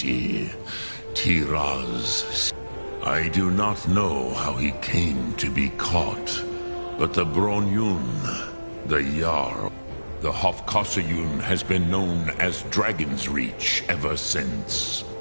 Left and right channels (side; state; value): both; inverted; correlation -1.00